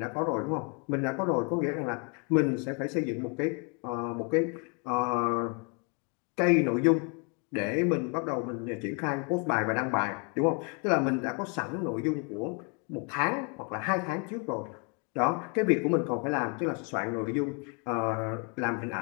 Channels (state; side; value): quieter; right; 36.1 dB